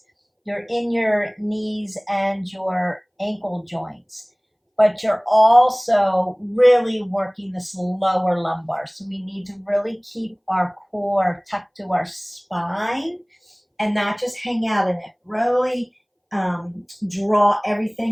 You're in your knees and your ankle joints. But you're also really working this lower lumbar. So we need to really keep our core tucked to our spine and not just hang out in it. Really draw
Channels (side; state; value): both; identical; correlation 1.00